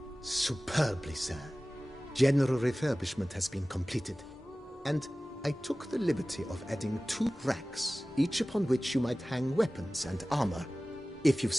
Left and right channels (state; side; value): normal; both; correlation 0.97